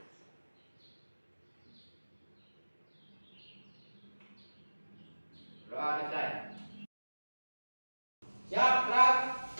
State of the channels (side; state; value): both; inverted; correlation -1.00